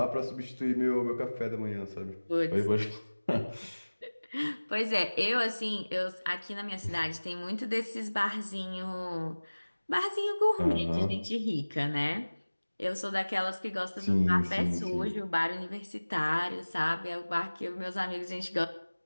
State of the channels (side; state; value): both; inverted; correlation -1.00